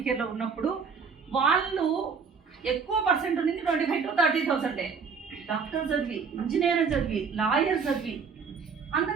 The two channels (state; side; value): quieter; left; 5.6 dB